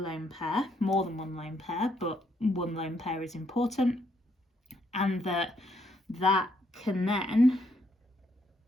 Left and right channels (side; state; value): both; normal; correlation 0.73